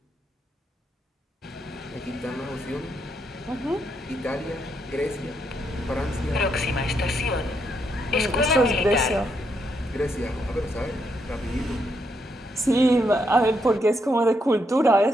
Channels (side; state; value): both; normal; correlation 0.78